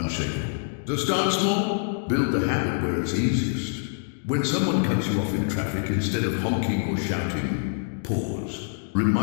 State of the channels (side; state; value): right; silent; digital silence